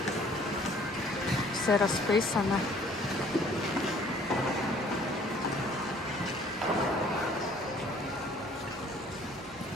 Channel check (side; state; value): both; normal; correlation 0.56